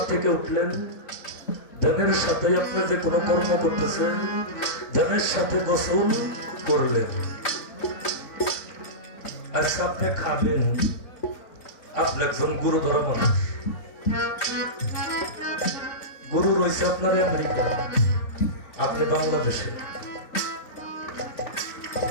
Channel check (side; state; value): right; late; 3.6 ms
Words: থেকে উঠলেন, ধ্যানের সাথে আপনি যে কোনো কর্ম করতেছেন, ধ্যানের সাথে গোসল করলেন। আচ্ছা, আপনি খাবেন, আপনি একজন গুরু ধরা মানুষ, গুরু রয়েছে আপনার আমেরিকা, আপনি বাংলাদেশে।